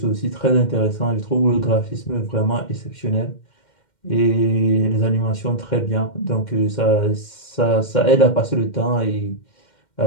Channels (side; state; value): right; late; 2.1 ms